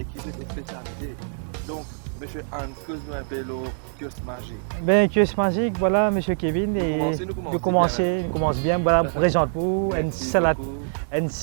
qui ont des spécialités. Donc, M. Hans, que nous un peu l'eau, kiosque magique. Ben, kiosque magique, voilà, M. Kevin. Nous commençons bien même. Nous commençons bien, voilà, je vous présente pour Merci beaucoup. une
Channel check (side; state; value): left; silent; 62 dB below the other